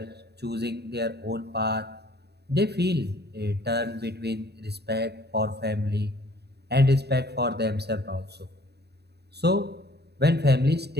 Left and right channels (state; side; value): late; left; 0.48 ms